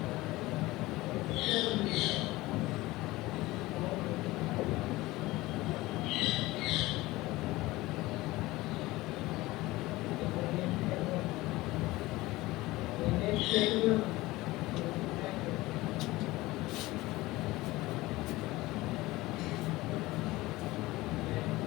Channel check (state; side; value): quieter; right; 19.3 dB